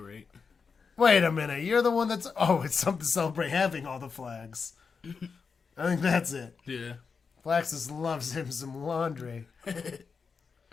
Wait a minute. You're the one that's... Oh, it's something to celebrate having all the flags. I think that's it. Yeah. Flaxus loves him some laundry.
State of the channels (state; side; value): quieter; right; 5.4 dB